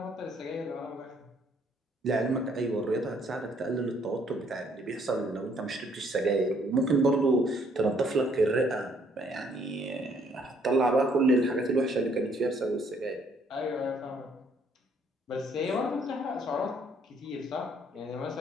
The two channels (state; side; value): normal; both; correlation 0.65